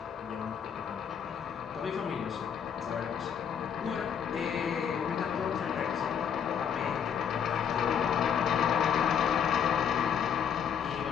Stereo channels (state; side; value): quieter; right; 7.9 dB